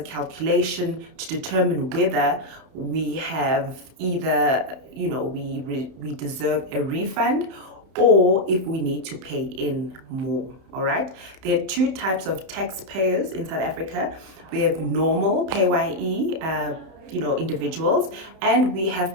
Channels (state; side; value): late; left; 31 ms